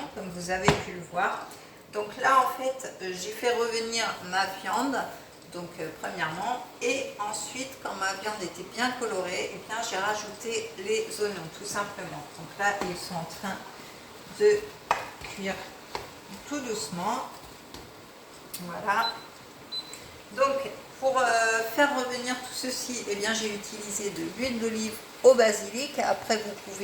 comme vous avez pu le voir. Donc là en fait j'ai fait revenir ma viande. Donc premièrement, et ensuite quand ma viande était bien colorée, eh bien j'ai rajouté les oignons tout simplement. Donc là ils sont en train de cuire tout doucement. Voilà. Donc pour faire revenir tout ceci, eh bien j'ai utilisé de l'huile d'olive au basilic. Après vous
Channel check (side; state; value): both; identical; correlation 1.00